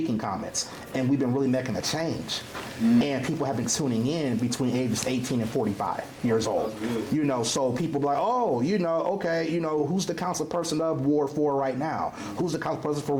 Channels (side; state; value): both; identical; correlation 1.00